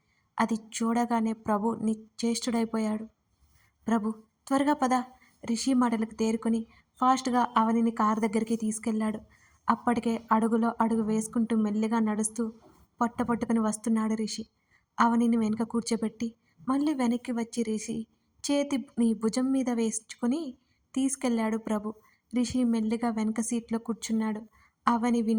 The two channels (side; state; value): both; identical; correlation 1.00